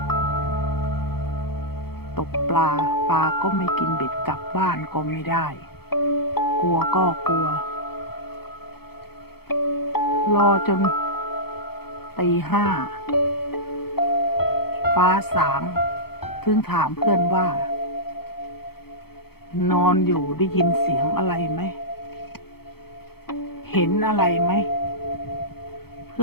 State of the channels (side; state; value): right; late; 0.96 ms